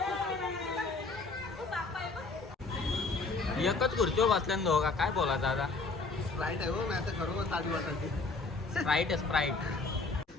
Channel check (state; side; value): quieter; right; 3.8 dB